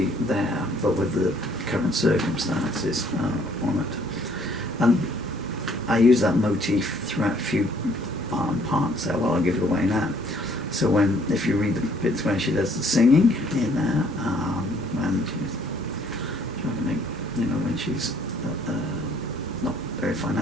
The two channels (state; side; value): normal; both; correlation 0.62